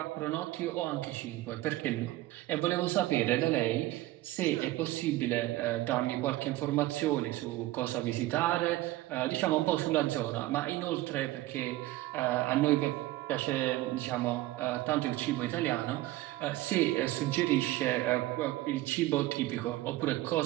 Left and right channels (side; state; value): left; quieter; 17.0 dB